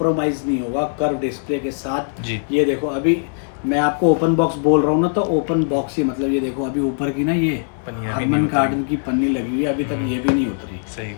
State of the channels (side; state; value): right; silent; 66 dB below the other